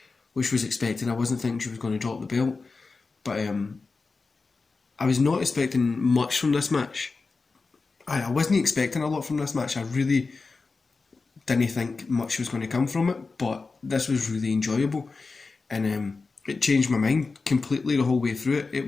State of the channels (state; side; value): quieter; right; 4.1 dB